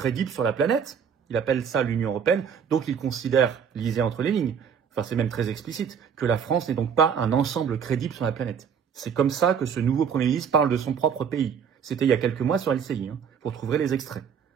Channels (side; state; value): left; quieter; 7.3 dB